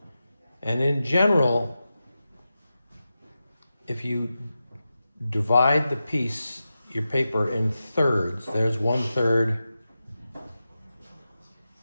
And in general, if you divide the piece, your paper, in thirds, there's 1/3.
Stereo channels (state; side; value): inverted; both; correlation -0.92